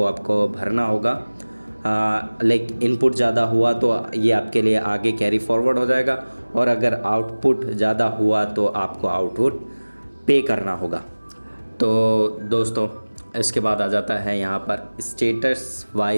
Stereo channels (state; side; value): inverted; both; correlation -1.00